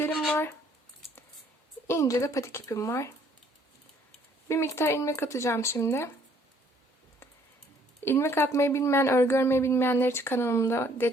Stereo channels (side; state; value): both; normal; correlation 0.62